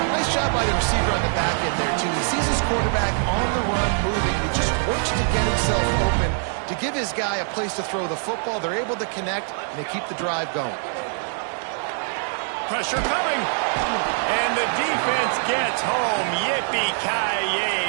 Nice job by the receiver on the back end there, too. He sees his quarterback on the run moving. He just works to get himself open to give his guy a place to throw the football. They're able to connect, and they keep the drive going. Pressure coming. And the defense gets home.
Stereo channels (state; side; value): silent; left; 63 dB below the other